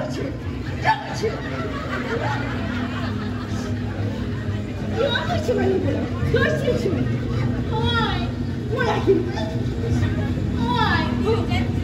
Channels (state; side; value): identical; both; correlation 1.00